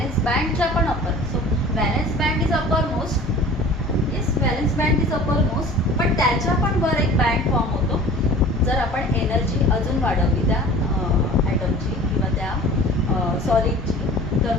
बँडच्या पण upper. So valence band is upper most. Yes, valence band is upper most, पण त्याच्या पण वर एक बँड फॉर्म होतो जर आपण एनर्जी अजून वाढवली त्या ॲटमची किंवा त्या सॉलिडची, तर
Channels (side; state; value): both; normal; correlation 0.44